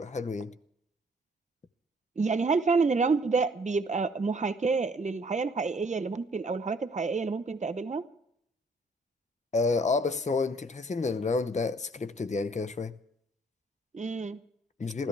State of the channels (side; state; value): both; normal; correlation 0.61